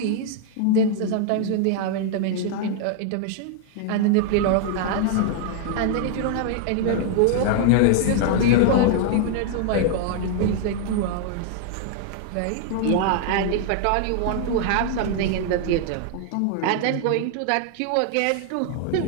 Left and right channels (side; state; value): both; different; correlation 0.00